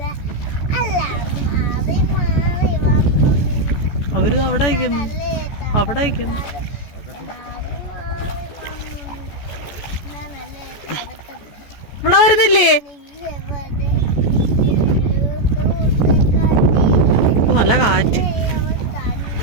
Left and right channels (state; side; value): late; right; 14 ms